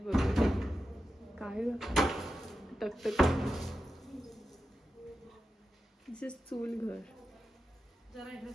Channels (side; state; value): both; normal; correlation 0.91